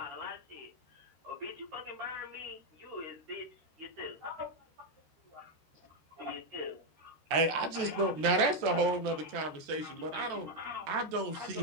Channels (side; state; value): left; late; 13 ms